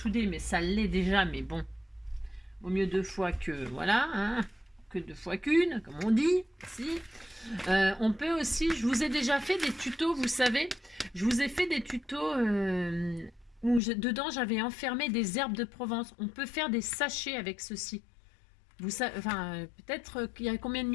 mais ça l'est déjà, mais bon, vaut mieux 2 fois que voilà, hein, que 2 fois qu'une, comme on dit. Si. On peut aussi, je vous ai déjà fait des tutos, vous savez, je vous ai fait des tutos où dedans j'avais enfermé des herbes de Provence. On peut faire des sachets avec ceci. Vous savez, enfin, peut-être qu'il y a combien de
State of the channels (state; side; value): drops out; right; at 13.8 s